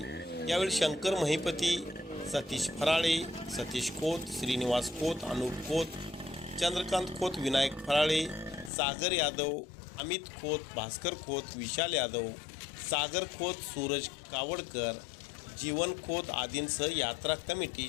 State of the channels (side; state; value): right; drops out; at 8.7 s